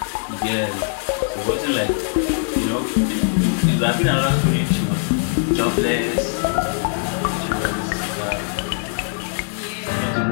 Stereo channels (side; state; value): right; silent; 65 dB below the other